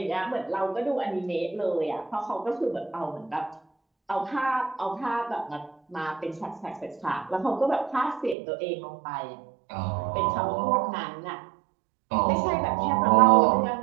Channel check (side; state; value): left; drops out; at 8.3 s